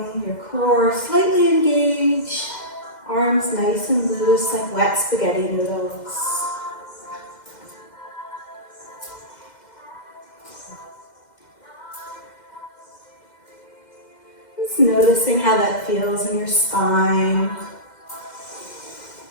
your core slightly engaged. Arms nice and loose like wet spaghetti noodles. Just noticing how that feels in your spine.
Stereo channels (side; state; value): right; late; 2.1 ms